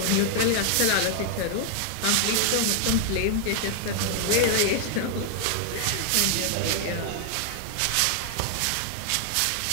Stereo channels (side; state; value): both; different; correlation 0.00